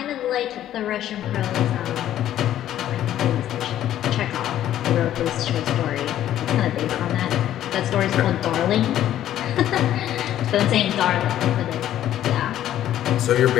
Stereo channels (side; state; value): right; quieter; 12.0 dB